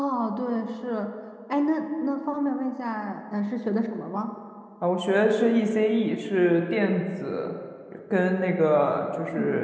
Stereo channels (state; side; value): identical; both; correlation 1.00